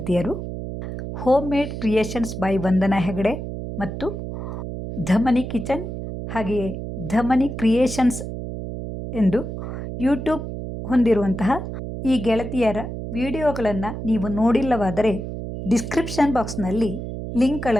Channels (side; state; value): right; noise; hum, 7 dB below the sound